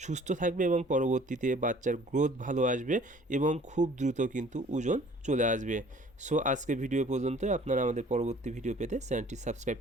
সুস্থ থাকবে এবং পরবর্তীতে বাচ্চার গ্রোথ ভালো আসবে এবং খুব দ্রুত কিন্তু ওজন চলে আসবে। সো আজকে ভিডিও পর্যন্ত। আপনারা আমাদের পরবর্তী ভিডিও পেতে চ্যানেলটি সাবস্ক্রাইব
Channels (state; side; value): normal; both; correlation 0.53